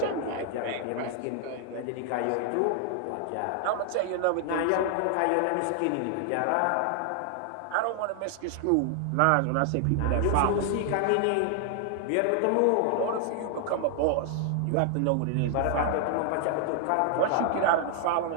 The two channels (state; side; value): different; both; correlation 0.00